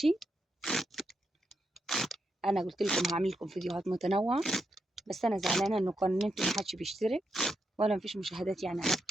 انا قلت لكم هعمل لكم فيديوهات متنوعه، بس انا زعلانه ان قناتي ما حدش بيشترك ولا مفيش مشاهدات يعني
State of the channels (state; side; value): normal; both; correlation 0.83